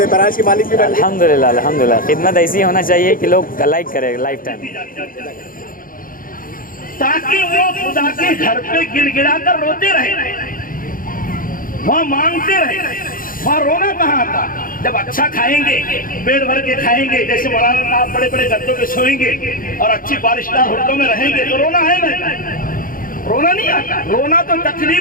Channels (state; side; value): late; right; 0.41 ms